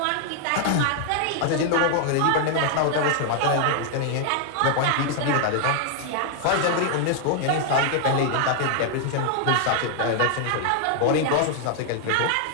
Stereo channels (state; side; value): different; both; correlation 0.00